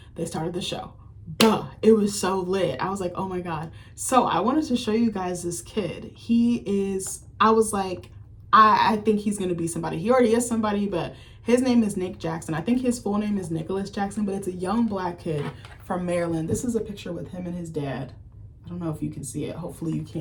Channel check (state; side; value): identical; both; correlation 1.00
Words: they started the show. Duh, it was so lit. I was like, oh my God. So I wanted to show you guys this kid. I was like, I think he's gonna be somebody. He already is somebody, but his name is Nick Jackson. I think his full name is Nicholas Jackson, but it's a young Black kid from Maryland. This is a picture with him and his dad. I don't know if you can see it. Hopefully you